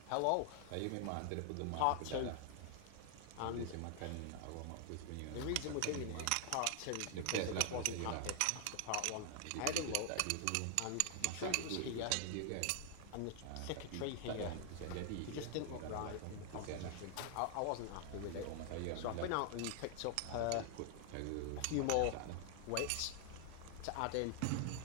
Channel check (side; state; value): both; different; correlation 0.00